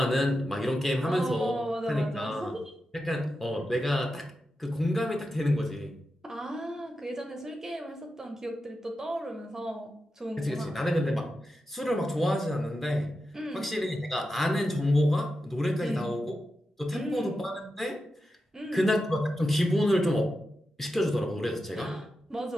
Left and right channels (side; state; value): both; normal; correlation 0.90